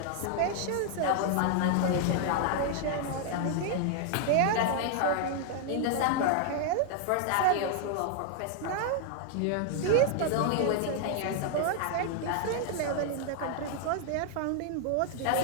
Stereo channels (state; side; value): different; both; correlation 0.00